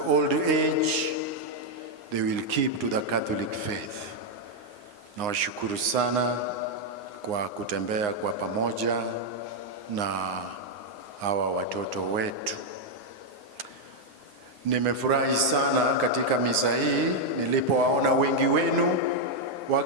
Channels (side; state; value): left; late; 9.7 ms